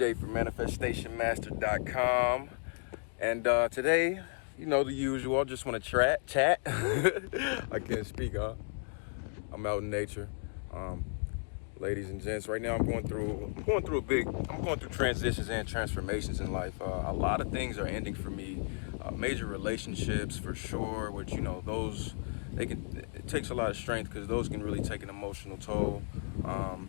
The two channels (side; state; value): right; silent; 55 dB below the other